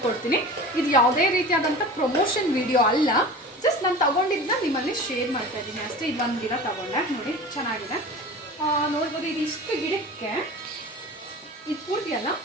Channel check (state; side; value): normal; both; correlation 0.36